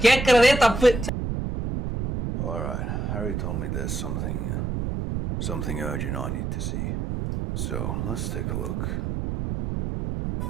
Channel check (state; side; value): noise; right; rumble, 2 dB below the sound